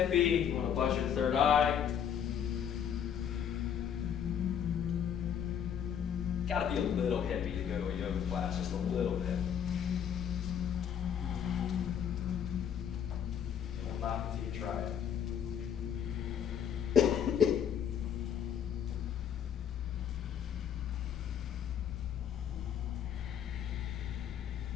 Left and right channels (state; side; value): quieter; right; 8.7 dB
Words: you want to buzz your third eye. Got to be a little hippie to go to a yoga class, just a little bit. It will not until you try it.